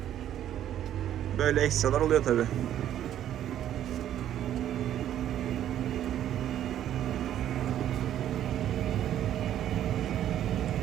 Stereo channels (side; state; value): left; quieter; 11.2 dB